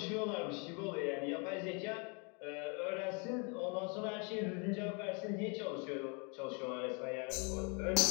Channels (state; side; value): quieter; right; 34.5 dB